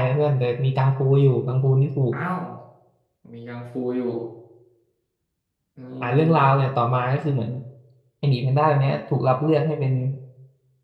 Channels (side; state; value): both; identical; correlation 1.00